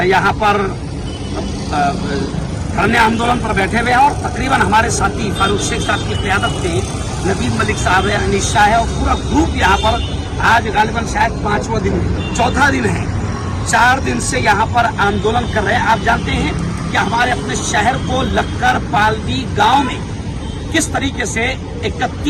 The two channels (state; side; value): identical; both; correlation 1.00